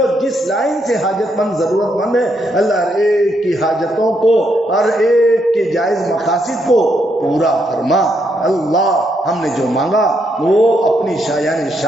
جس لائن سے حاجت مند ضرورت مند ہے اللہ ہر ایک کی حاجتوں کو، ہر ایک کے جائز مقاصد کو پورا فرما. اللہ ہم نے جو مانگا وہ اپنی شایان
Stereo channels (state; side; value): normal; both; correlation 0.77